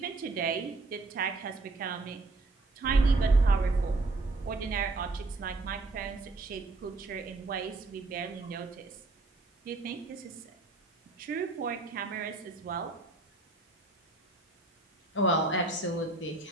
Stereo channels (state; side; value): quieter; left; 3.2 dB